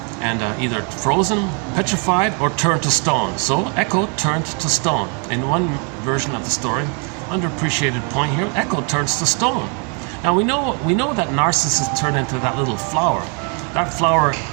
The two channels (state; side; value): quieter; left; 37.5 dB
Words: And either frozen, petrified, or turned to stone. So Echo turned to stone. In one version of the story, underappreciated point here, Echo turns to stone. Now we know that Narcissus turned into that little flower. That flower